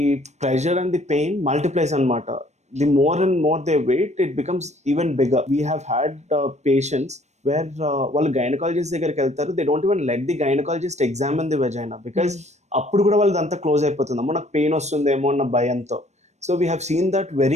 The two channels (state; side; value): late; left; 0.33 ms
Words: pressure and the pain multiplies anamata. The more and more they wait, it becomes even bigger. We have had patients where వాళ్ళు gynaecologist దగ్గరికి వెళ్తారు, they don't even let the gynaecologist examine the vagina because అప్పుడు కూడా వాళ్ళది అంతా close అయిపోతుంది, అమ్మో నాకు పెయిన్ వస్తుందేమో అన్న భయంతో. So we have seen that